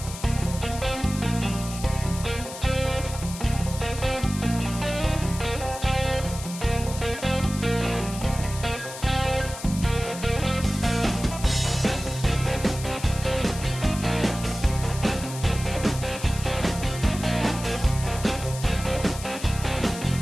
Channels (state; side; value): noise; left; hiss, 12 dB below the sound